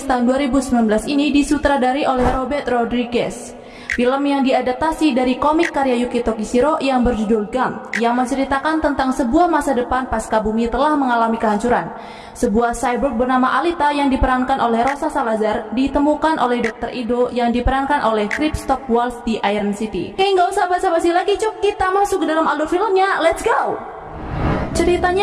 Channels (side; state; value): both; identical; correlation 1.00